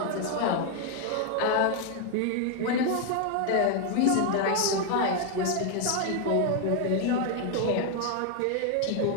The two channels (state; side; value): different; both; correlation 0.01